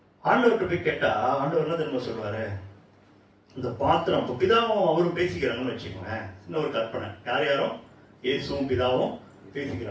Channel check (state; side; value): identical; both; correlation 1.00